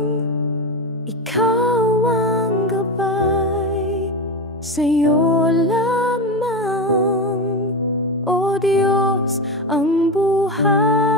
ikaw ang gabay. Sa'yo lamang, O Diyos, ang buhay.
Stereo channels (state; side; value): normal; both; correlation 0.17